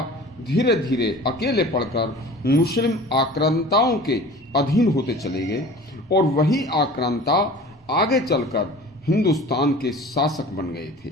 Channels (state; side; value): normal; both; correlation 0.42